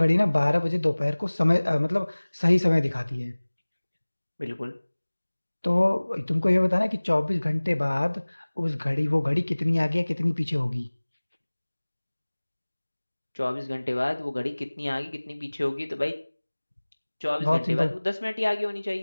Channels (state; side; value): inverted; both; correlation -1.00